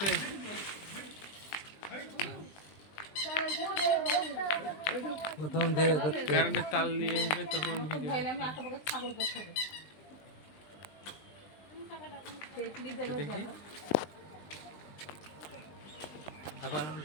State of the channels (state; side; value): late; right; 20 ms